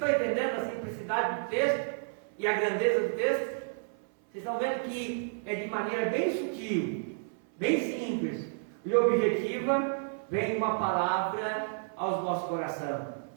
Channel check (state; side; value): silent; left; 56 dB below the other